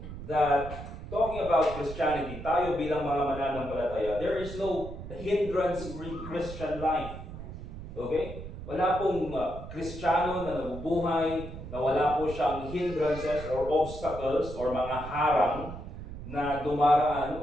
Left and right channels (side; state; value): right; noise; rumble, 10 dB below the sound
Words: that talking about Christianity, tayo bilang mga mananampalataya, there is no hindrance-free Christian life. Okay? Wala pong Kristiyano na nabubuhay na wala po siyang hindrances or obstacles or mga harang na dumaraan